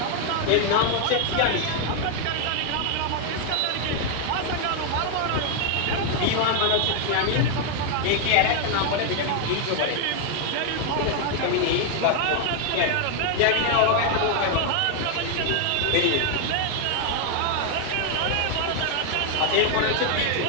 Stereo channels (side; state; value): both; different; correlation 0.01